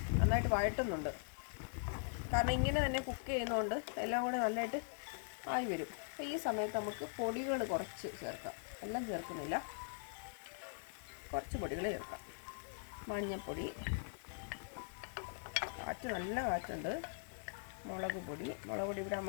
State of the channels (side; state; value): right; silent; 50 dB below the other